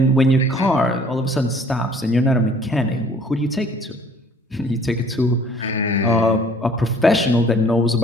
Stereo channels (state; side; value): normal; both; correlation 0.55